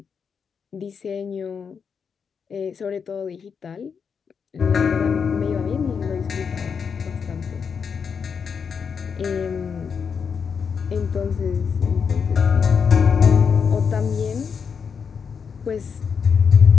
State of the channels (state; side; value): quieter; right; 6.3 dB